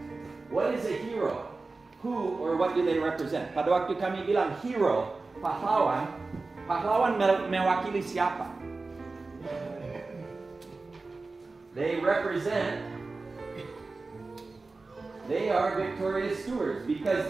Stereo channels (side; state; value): left; quieter; 3.7 dB